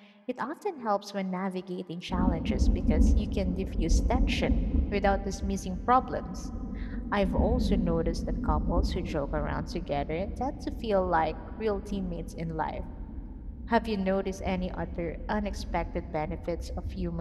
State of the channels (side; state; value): both; identical; correlation 1.00